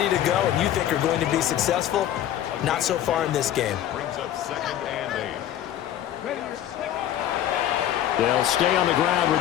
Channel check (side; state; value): right; quieter; 11.6 dB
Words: to go and you think are going to be successful. Not so far in this game. Brings up 2nd and 8. They'll stay on the ground